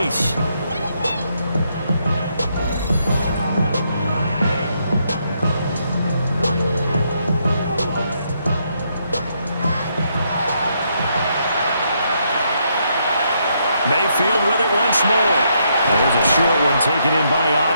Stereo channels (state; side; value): inverted; both; correlation -0.76